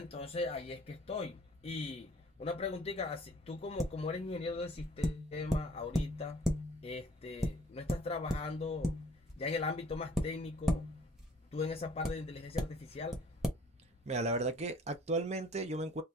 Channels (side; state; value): both; normal; correlation 0.55